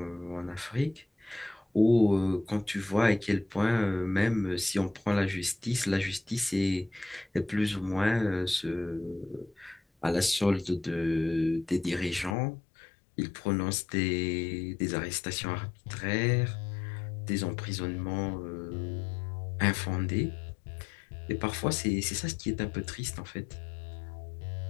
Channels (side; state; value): right; drops out; at 12.4 s